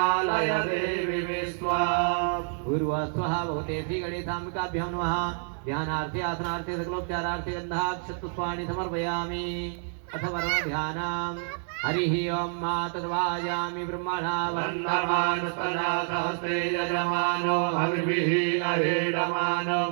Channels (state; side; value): silent; left; 59 dB below the other